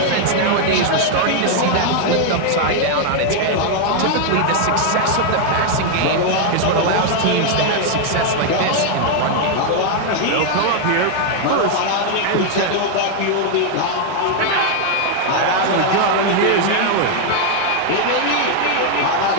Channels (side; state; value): both; different; correlation 0.00